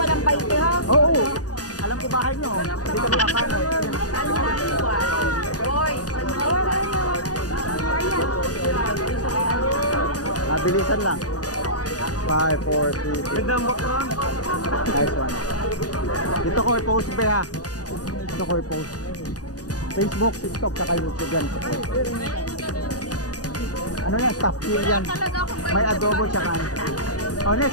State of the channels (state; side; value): late; right; 0.68 ms